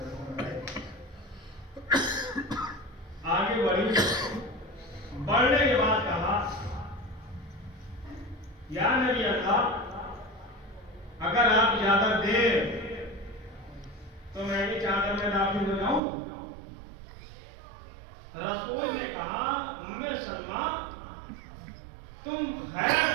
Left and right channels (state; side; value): drops out; left; at 16.0 s